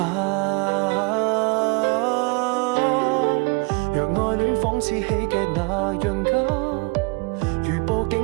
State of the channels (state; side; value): quieter; left; 31.4 dB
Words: 若愛戀仿似喜劇那樣假，如佈